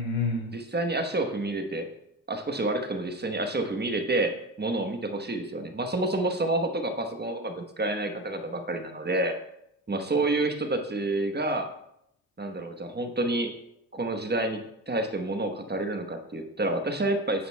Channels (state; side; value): normal; both; correlation 0.26